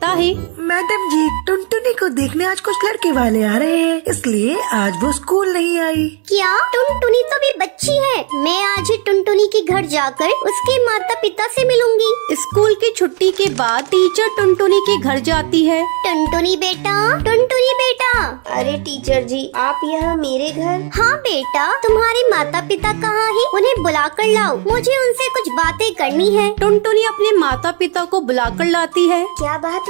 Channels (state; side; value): quieter; left; 36.5 dB